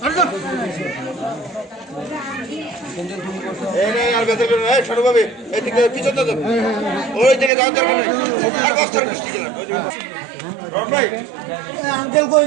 ছোটভাবে এদিকে পিছনে ওই দিকে যাওয়ার দরকার নেই আর বস্তার বৃষ্টি আঙ্কেল কই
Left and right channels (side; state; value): left; drops out; at 7.5 s